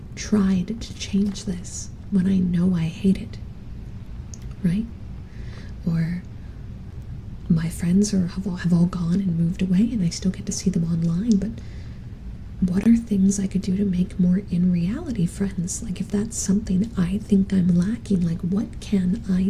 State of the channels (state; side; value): identical; both; correlation 1.00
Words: tried to change this when I know I hate it? Right? Or my friends have all gone and moved away and I still get to see them online, but what are things I could do to make more in reality friends? Like, if that's something I think I'm lacking, like, what can